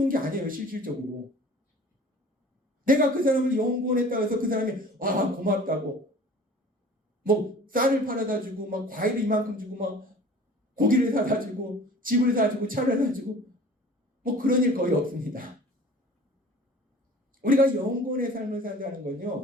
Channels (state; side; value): normal; both; correlation 0.45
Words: 게 아니에요. 실질적으로 내가 그 사람을 영혼구원했다고 해서 그 사람이 와 고맙다고 뭐 쌀을 팔아다 주고 막 과일을 이만큼 주고 막 고기를 사다 주고 집을 사주고 차를 사주고 뭐 그런 일 거의 없습니다. 우리가 영혼구원의 삶을 산다는